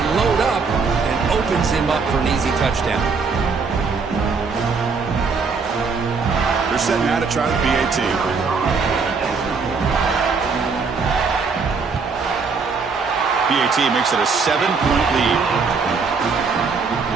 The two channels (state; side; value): quieter; left; 4.9 dB